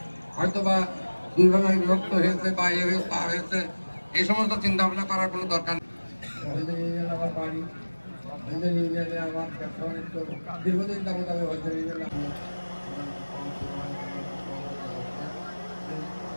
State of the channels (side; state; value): both; inverted; correlation -1.00